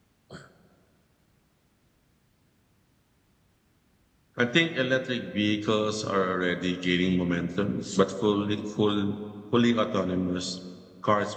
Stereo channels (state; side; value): identical; both; correlation 1.00